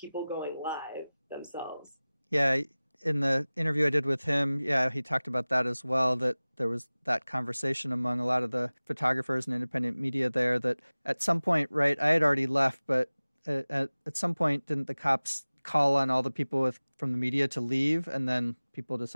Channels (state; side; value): inverted; both; correlation -0.99